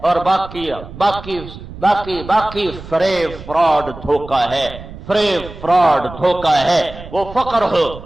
اور باقی فریب فراڈ دھوکہ ہے، فریب فراڈ دھوکہ ہے۔ وہ فقر ہو،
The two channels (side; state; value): right; noise; rumble, 14 dB below the sound